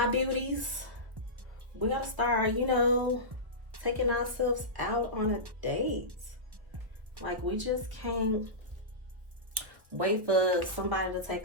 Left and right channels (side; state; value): left; late; 1.3 ms